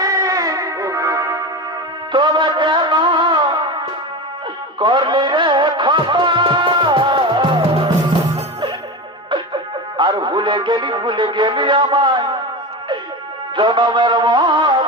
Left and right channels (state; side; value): normal; both; correlation 0.24